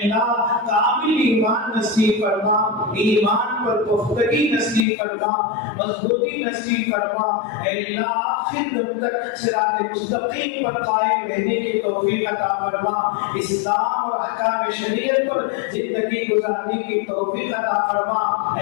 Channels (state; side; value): drops out; right; at 4.9 s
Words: کامل ایمان نصیب فرما، ایمان پر پختگی نصیب فرما، مضبوطی نصیب فرما، اے اللہ آخر دم تک صراط مستقیم پر قائم رہنے کی توفیق عطا فرما، اسلام اور احکام شریعت پر زندگی گزارنے کی توفیق عطا فرما،